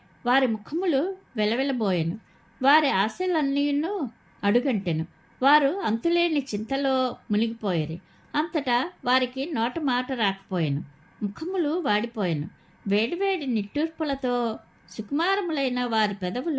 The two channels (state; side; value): identical; both; correlation 1.00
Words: వారి ముఖములు వెలవెలబోయెను. వారి ఆశలన్నీను అడుగంటెను. వారు అంతులేని చింతలో మునిగిపోయేరు. అంతటా వారికి నోట మాట రాకపోయెను. ముఖములు వాడిపోయెను. వేడివేడి నిట్టూర్పులతో సుకుమారములైన వారి